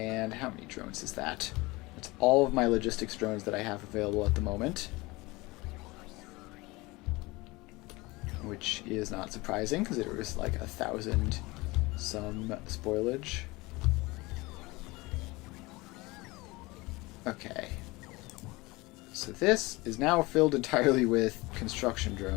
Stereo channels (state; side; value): quieter; right; 22.7 dB